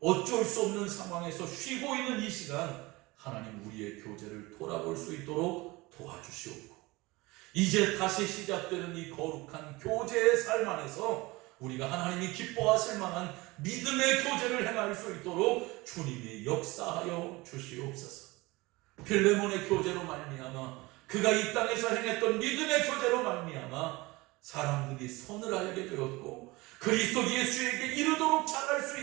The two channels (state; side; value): quieter; left; 22.2 dB